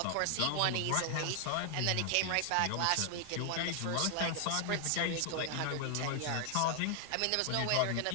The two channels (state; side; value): different; both; correlation 0.00